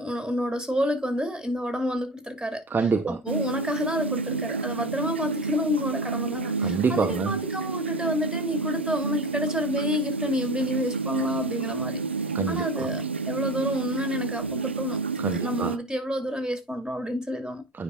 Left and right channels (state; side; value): normal; both; correlation 0.30